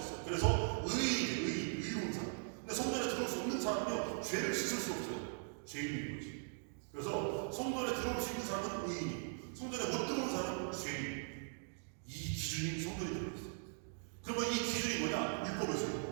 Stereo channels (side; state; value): left; silent; digital silence